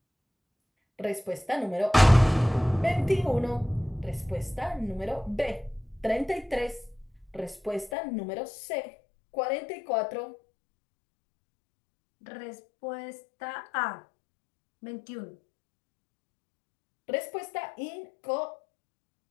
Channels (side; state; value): right; drops out; at 7.9 s